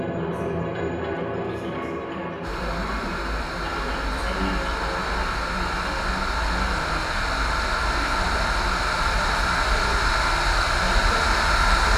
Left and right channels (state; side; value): identical; both; correlation 1.00